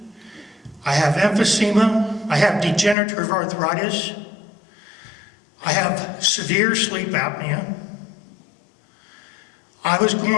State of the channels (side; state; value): right; drops out; at 3.0 s